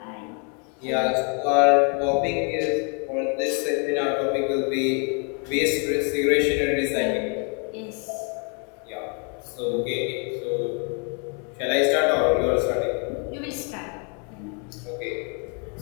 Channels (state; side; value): quieter; right; 37.8 dB